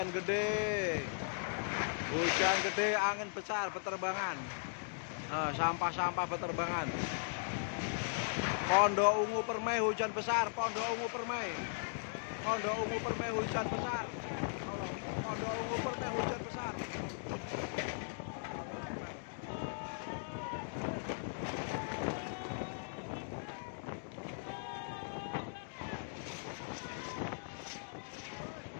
gede. Hujan gede, angin besar beterbangan. Sampah-sampah beterbangan. Pondok Ungu Permai hujan besar, Pondok Ungu Permai. Pondok Ungu Permai hujan besar. Pondok Ungu Permai hujan besar.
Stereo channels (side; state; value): right; silent; digital silence